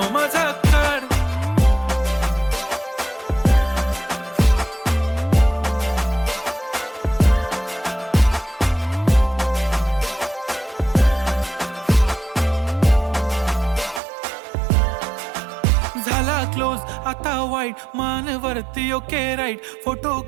माझा काढ. झाला क्लोज आता वाईट, मानवरती ओके राईट. फोटो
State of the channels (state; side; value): drops out; left; at 14.0 s